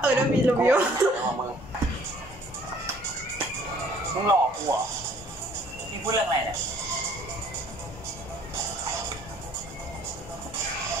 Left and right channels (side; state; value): both; normal; correlation 0.57